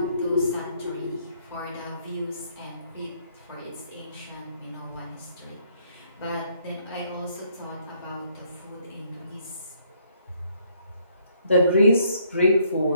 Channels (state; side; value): inverted; both; correlation -0.67